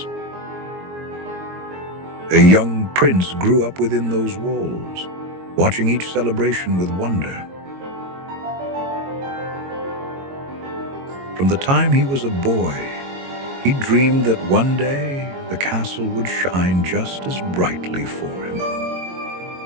A young prince grew up within those walls, watching each celebration with wonder. From the time he was a boy, he dreamed that one day the castle would shine just as brightly for him.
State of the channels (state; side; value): late; left; 22 ms